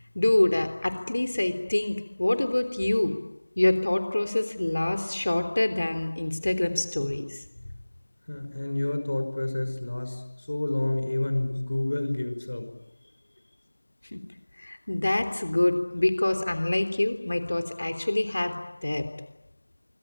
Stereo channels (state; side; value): inverted; both; correlation -1.00